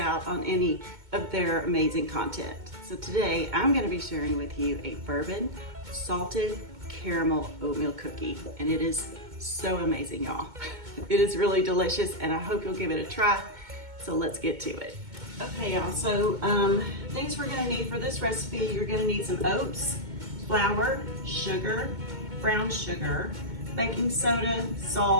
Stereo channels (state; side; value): late; left; 2.2 ms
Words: on any of their amazing content. So today I'm going to be sharing with you a bourbon salted caramel oatmeal cookie, and it is so amazing, y'all. It is really delicious and I hope you'll give it a try. So let's get to it. Okay, y'all, so things we're gonna need for this recipe: you're gonna need some oats, flour, sugar, brown sugar, baking soda,